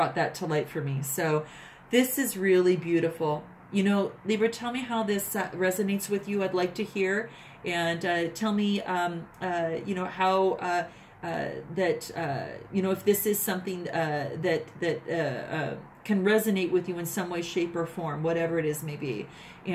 that to light for me. So this is really beautiful. Libra, tell me how this resonates with you. I'd like to hear. And tell me, how if this is something that can resonate with you in some way, shape, or form, whatever it is may be.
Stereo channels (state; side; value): identical; both; correlation 1.00